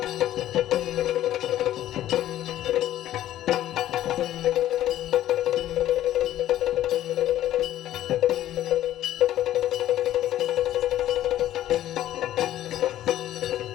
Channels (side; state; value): right; quieter; 13.0 dB